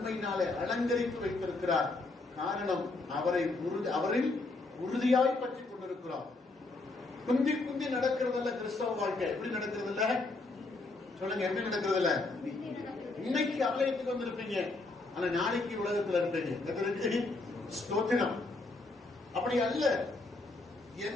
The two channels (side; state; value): right; quieter; 3.3 dB